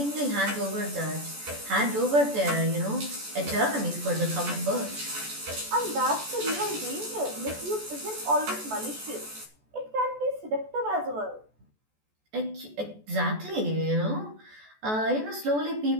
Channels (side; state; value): left; late; 14 ms